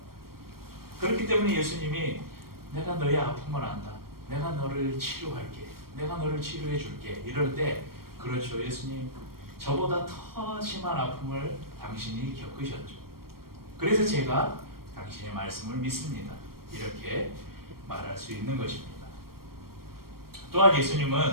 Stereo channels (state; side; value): late; left; 0.94 ms